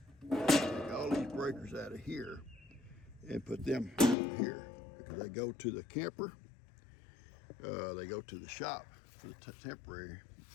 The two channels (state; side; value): drops out; right; at 4.2 s